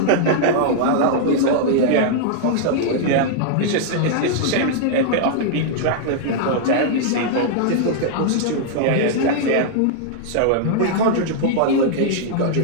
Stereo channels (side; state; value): both; different; correlation -0.01